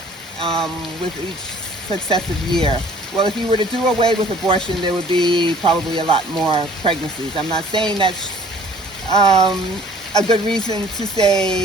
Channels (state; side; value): normal; both; correlation 0.53